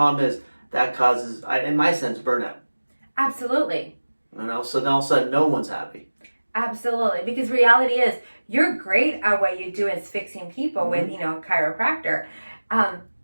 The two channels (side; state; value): both; inverted; correlation -1.00